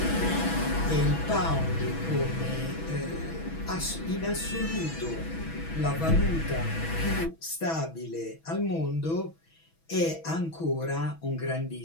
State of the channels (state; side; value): late; right; 6.1 ms